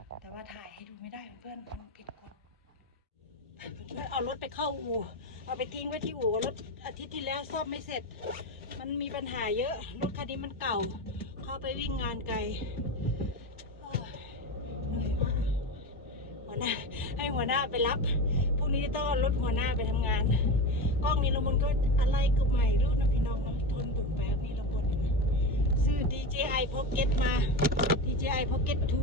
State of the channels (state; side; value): normal; both; correlation 0.22